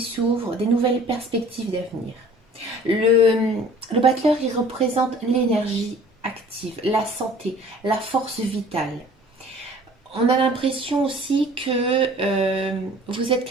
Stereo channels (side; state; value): both; normal; correlation 0.50